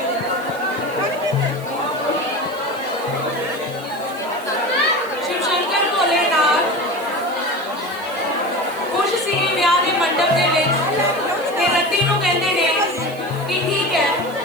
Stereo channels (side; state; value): right; noise; hiss, 20 dB below the sound